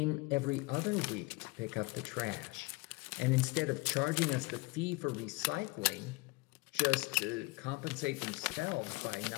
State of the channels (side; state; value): right; quieter; 24.7 dB